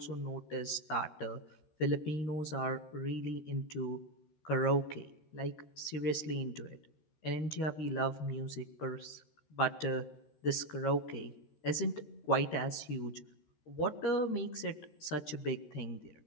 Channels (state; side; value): late; right; 13 ms